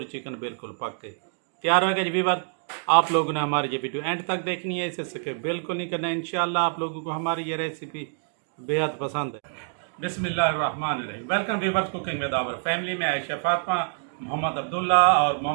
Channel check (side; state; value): left; silent; digital silence